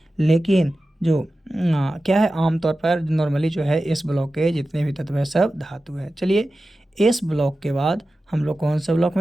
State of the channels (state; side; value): normal; both; correlation 0.94